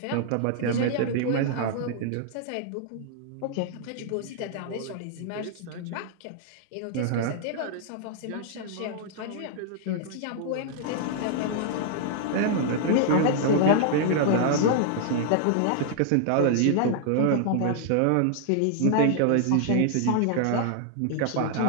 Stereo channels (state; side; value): different; both; correlation -0.01